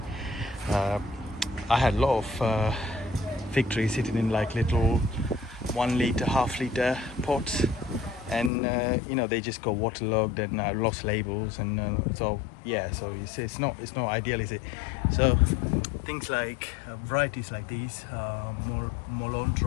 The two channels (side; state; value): right; drops out; at 8.5 s